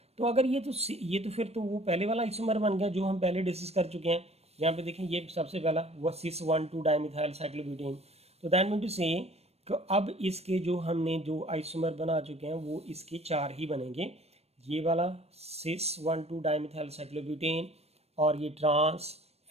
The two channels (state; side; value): late; left; 0.30 ms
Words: तो अगर ये तो फिर तो वो पहले वाला आइसोमर बन गया जो हम पहले डिस्कस कर चुके हैं। यहाँ पे देखें ये सबसे पहला वो सिस 1 2 डाइमिथाइल साइक्लोब्यूटेन। तो दैट मीन टू से अब इसके जो हमने जो आइसोमर बना चुके हैं वो इसके 4 ही बनेंगे, ये वाला सिस 1 2 डाइमिथाइल साइक्लोब्यूटेन और ये ट्रांस,